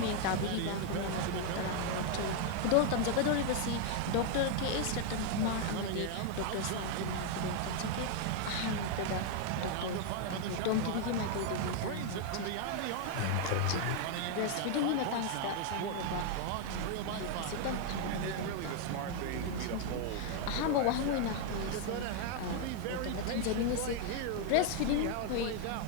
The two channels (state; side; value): different; both; correlation 0.00